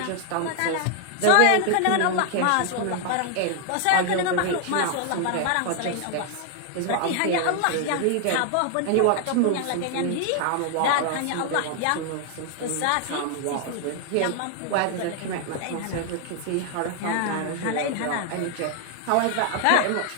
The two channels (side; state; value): both; different; correlation 0.00